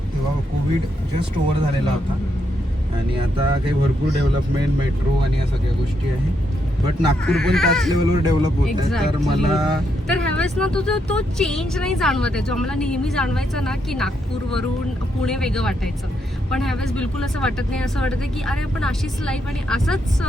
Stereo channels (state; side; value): normal; both; correlation 0.79